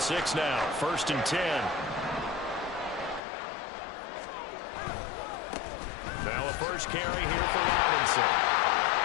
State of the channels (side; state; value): right; drops out; at 3.2 s